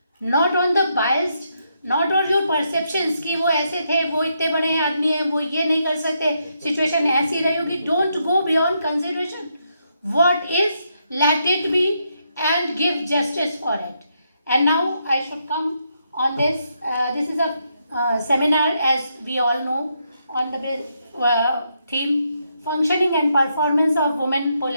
not on the biased, not on your perceptions कि वो ऐसे थे, वो इतने बड़े आदमी हैं, वो ये नहीं कर सकते, सिचुएशन ऐसी रही होगी। Don't go beyond consideration. What is, let it be and give justice for it. And now I should come on this. This is a seminar, as we all know, on the theme functioning and performance of women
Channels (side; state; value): both; inverted; correlation -0.79